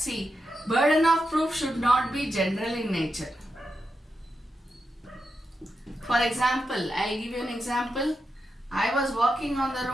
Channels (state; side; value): normal; both; correlation 0.87